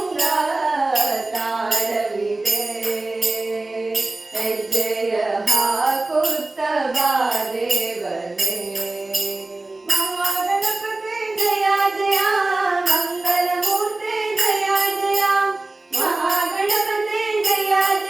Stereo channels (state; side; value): quieter; left; 3.0 dB